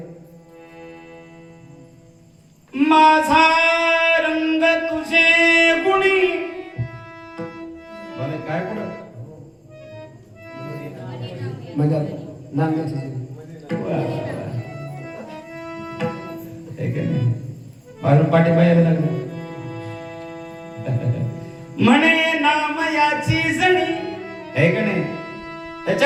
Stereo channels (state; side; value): identical; both; correlation 1.00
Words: माझा रंग तुझे गुणी. बरं काय पुढं म्हणजे नांग्याची बाहेरून पाठी बाहेर लागलं. म्हणे नाम याची जणी आहे का नाही.